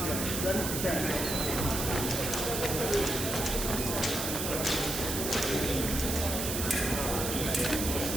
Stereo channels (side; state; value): right; noise; hiss, 2 dB below the sound